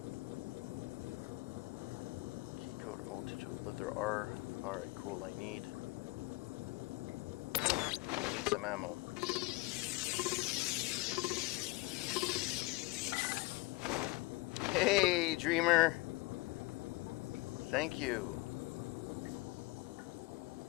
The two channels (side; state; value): right; quieter; 23.2 dB